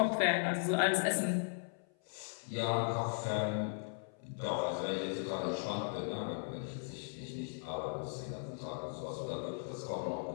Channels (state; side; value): silent; right; 53 dB below the other